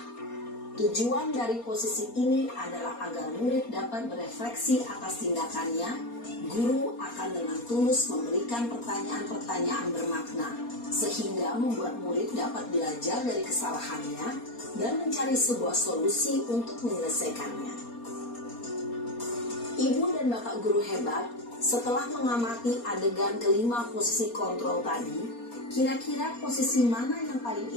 Tujuan dari posisi ini adalah agar murid dapat berefleksi atas tindakannya. Guru akan dengan tulus memberikan pertanyaan-pertanyaan bermakna, sehingga membuat murid dapat belajar dari kesalahannya dan mencari sebuah solusi untuk menyelesaikannya. Ibu dan bapak guru hebat, setelah mengamati adegan kelima posisi kontrol tadi, kira-kira posisi mana yang paling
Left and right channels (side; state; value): right; late; 4.3 ms